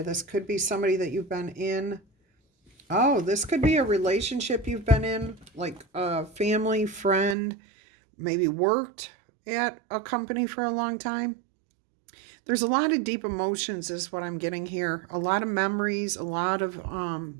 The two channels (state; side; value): drops out; left; at 7.4 s